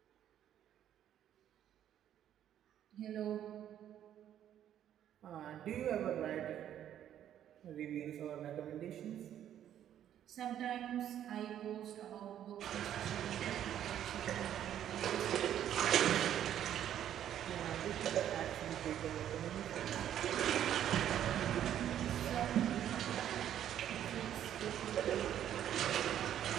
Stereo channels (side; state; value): left; quieter; 10.7 dB